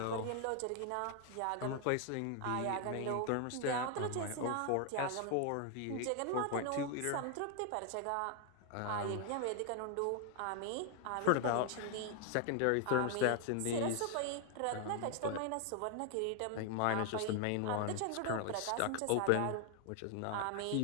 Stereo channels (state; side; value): different; both; correlation 0.00